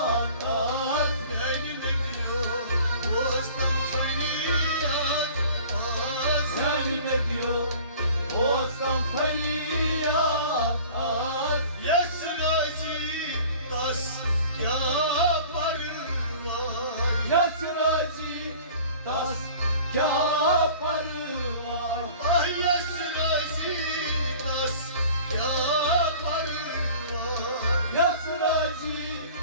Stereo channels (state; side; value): inverted; both; correlation -0.45